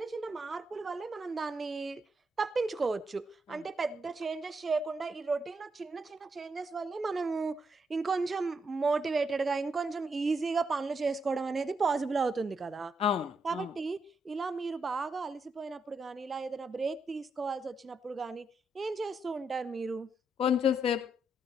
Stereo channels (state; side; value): normal; both; correlation 0.80